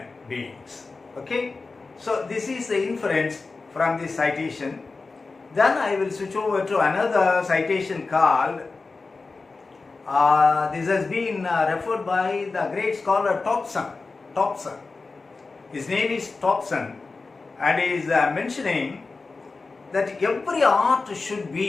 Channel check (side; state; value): right; quieter; 3.9 dB